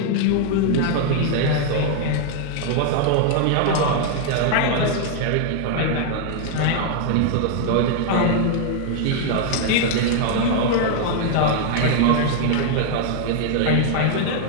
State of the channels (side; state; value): both; different; correlation 0.00